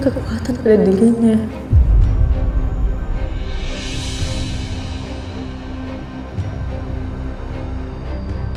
kekuatan pada dirinya.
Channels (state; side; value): identical; both; correlation 1.00